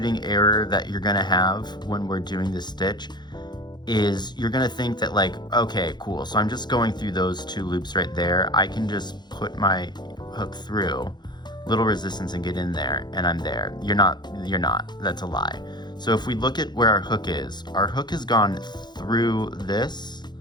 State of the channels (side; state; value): right; late; 0.21 ms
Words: error that you're gonna have when we're doing this stitch is you're gonna think that like, okay, cool, so I'm just going through those 2 loops right there. I can just put my hook through, little resistance, and get in there, and I'm there. You're not, that's a lie. So if we look at where our hook has gone through this,